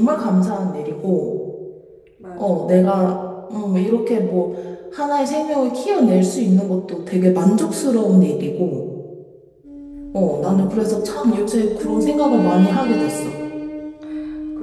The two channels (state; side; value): identical; both; correlation 1.00